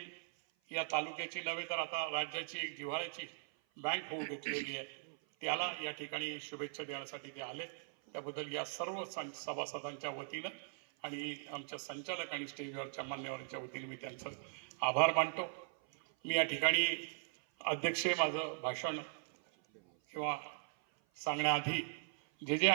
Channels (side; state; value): left; silent; 51 dB below the other